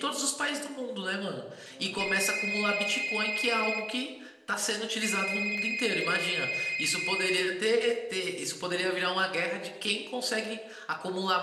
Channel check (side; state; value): both; identical; correlation 1.00